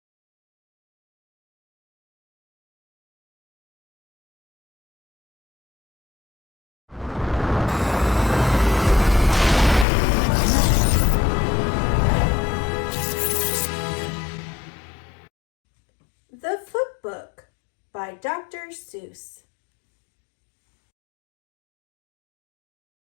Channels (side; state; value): right; drops out; at 9.9 s